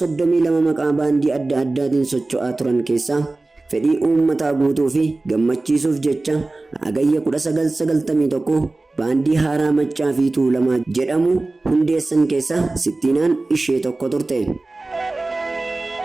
maqaa baandii adda addaatiin socho'aa turan keessaa fedhii uummataa guutuu fi gammachiisuuf jecha agayya 1991 baandii haaraa Maccaa fi Tuulamaa jedhamu hundeessan keessa Sittiinaan ishee tokko turte.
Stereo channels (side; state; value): left; quieter; 3.1 dB